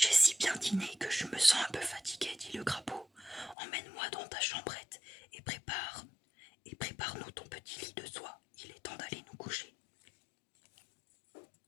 si bien dîné que je me sens un peu fatigué, dit le crapaud. Emmène-moi dans ta chambrette et prépare-nous ton petit lit de soie. Il est temps d'aller nous coucher.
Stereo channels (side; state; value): right; drops out; at 3.6 s